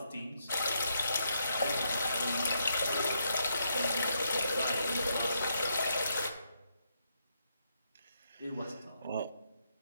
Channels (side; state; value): both; inverted; correlation -0.78